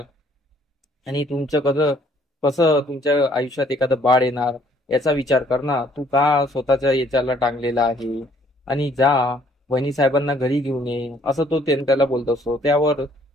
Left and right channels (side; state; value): both; normal; correlation 0.62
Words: आणि तुमचं कसं कसं तुमच्या आयुष्यात एखादं बाळ येणार याचा विचार कर ना. तू का स्वतःच्या याच्याला टांगलेला आहे? आणि जा वहिनी साहेबांना घरी घेऊन ये, असं तो त्याला बोलत असतो. त्यावर